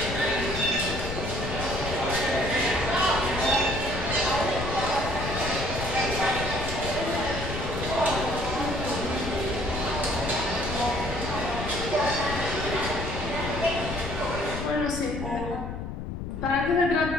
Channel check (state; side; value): noise; left; rumble, 6 dB below the sound